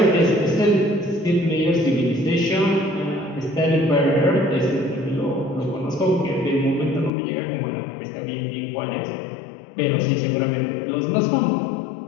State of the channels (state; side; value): drops out; right; at 7.1 s